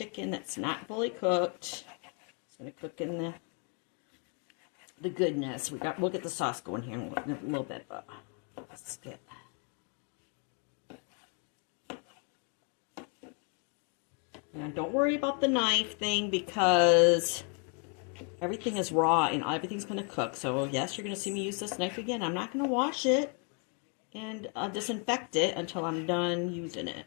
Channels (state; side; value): quieter; right; 38.0 dB